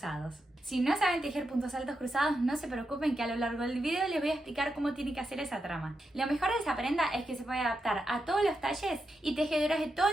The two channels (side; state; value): both; normal; correlation 0.86